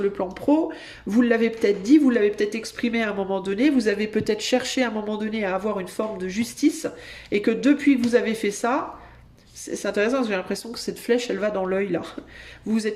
le plan pro, vous l'avez peut-être dit, vous l'avez peut-être exprimé à un moment donné, vous avez peut-être cherché à un moment donné à avoir une forme de justice, et que depuis que vous avez fait ça, c'est intéressant parce que j'ai l'impression que cette flèche, elle va dans l'œil là. Vous vous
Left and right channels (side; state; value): both; identical; correlation 1.00